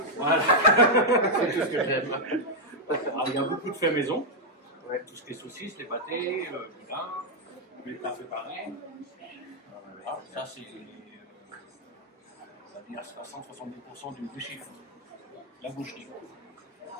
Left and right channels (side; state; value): both; normal; correlation -0.02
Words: Voilà, c'est tout ce que j'aime. Alors, il y a beaucoup de faits maison, tout ce qui est saucisses, les pâtés, le vin, les plats préparés. Alors, ça, c'est on va dire 60-70% du chiffre, la boucherie.